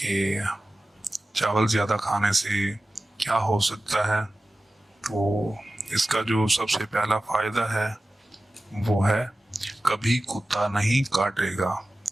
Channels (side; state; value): both; normal; correlation 0.95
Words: चावल ज़्यादा खाने से क्या हो सकता है। तो इसका जो सबसे पहला फ़ायदा है वो है कभी कुत्ता नहीं काटेगा।